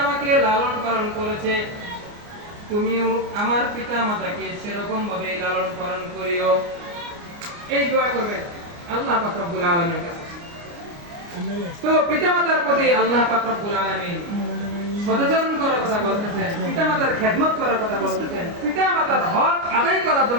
আমাকে লালন পালন করেছে, তুমিও আমার পিতা মাতাকে সেরকম ভাবে লালন পালন করিও। এই দোয়া করবেন আল্লাহ পাক রব্বুল আলামিনের কাছে। তো পিতা মাতার প্রতি আল্লাহ পাক রব্বুল আলামিন সদাচরণ করার কথা বলতেছেন, পিতা মাতার খেদমত করার কথা বলতেছেন, পিতা মাতার হক আদায় করার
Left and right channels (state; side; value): late; left; 29 ms